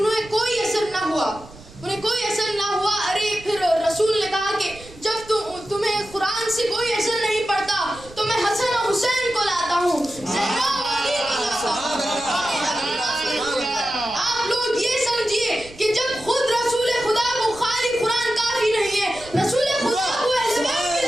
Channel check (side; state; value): right; noise; rumble, 20 dB below the sound